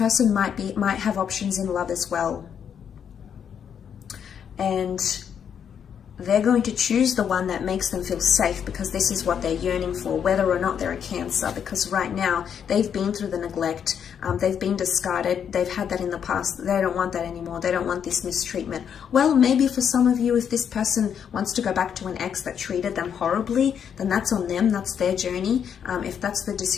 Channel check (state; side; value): quieter; right; 8.0 dB